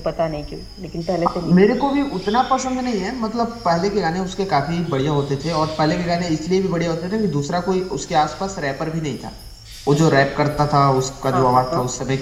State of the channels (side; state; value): both; identical; correlation 1.00